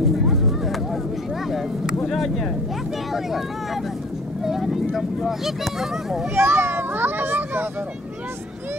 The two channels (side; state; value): both; normal; correlation 0.50